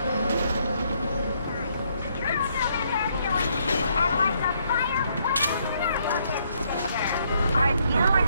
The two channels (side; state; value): both; inverted; correlation -0.71